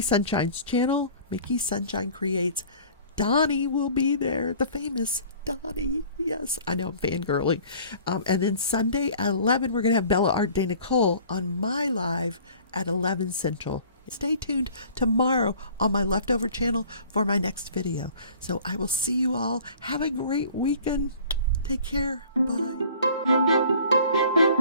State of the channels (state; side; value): inverted; both; correlation -0.49